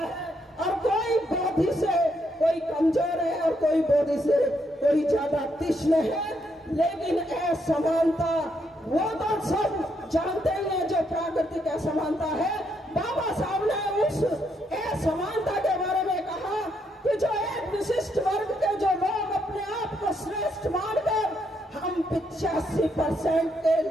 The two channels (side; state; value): both; normal; correlation 0.76